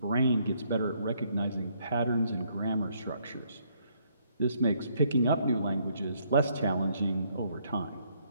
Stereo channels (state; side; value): inverted; both; correlation -0.69